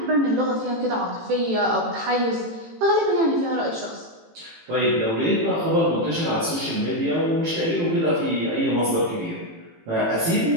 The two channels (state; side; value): late; left; 18 ms